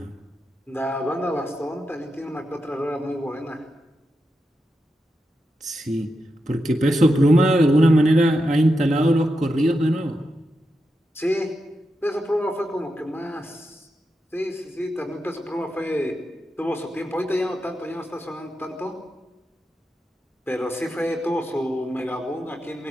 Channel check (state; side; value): normal; both; correlation 0.87